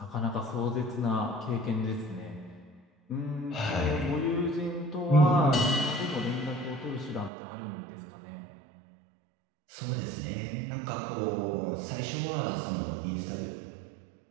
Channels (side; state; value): left; drops out; at 7.3 s